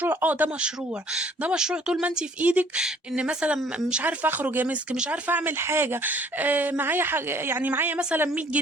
ده مشروع. ده مشروع طول ما انت في ايدك. ان مثلا مش عارفه اخرج يا مسك، مش عارفه اعمل حاجه، معايا حاجه، يعني معايا مثلا 100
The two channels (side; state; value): both; normal; correlation 0.58